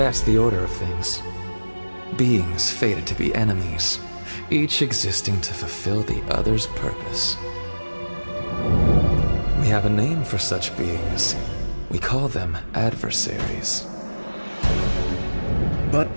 the order of things. Beings fated to be enemies, each existing to fulfill the other's purpose. We have a name for such beings. We call them adversaries. But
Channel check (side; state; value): both; inverted; correlation -1.00